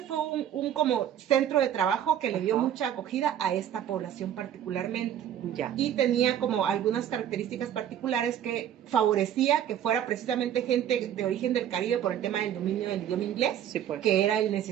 fue un como centro de trabajo que le dio mucha acogida a esta población particularmente. Ya. Y tenía como algunas características particulares que favorecía que fuera precisamente gente de origen del Caribe por el tema del dominio del idioma inglés, sí, pues. que era el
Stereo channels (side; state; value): left; quieter; 10.2 dB